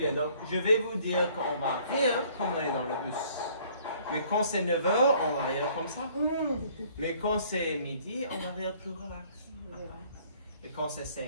Donc je vais vous dire qu'on va rire comme on est dans le bus. Mais quand c'est 9h, on va rire comme ça. Mais quand c'est midi, on va rire plus relax. Et quand c'est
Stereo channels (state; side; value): inverted; both; correlation -0.58